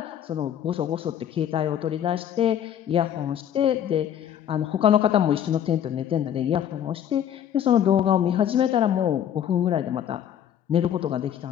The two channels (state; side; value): quieter; right; 9.9 dB